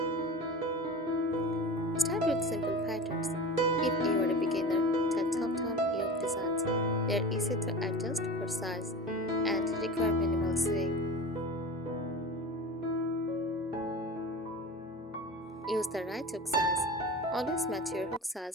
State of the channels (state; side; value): normal; both; correlation 0.32